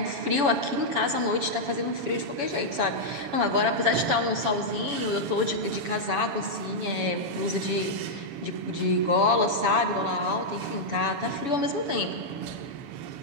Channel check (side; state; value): left; late; 7.1 ms